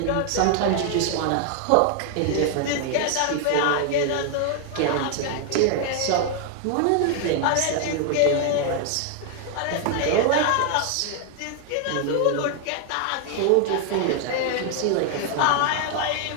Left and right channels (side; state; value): both; different; correlation 0.00